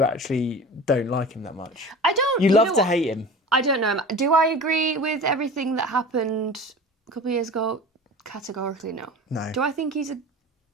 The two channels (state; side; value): normal; both; correlation 0.36